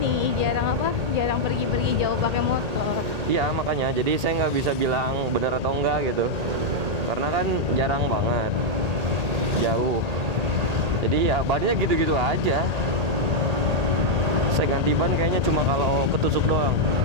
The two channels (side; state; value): left; late; 1.8 ms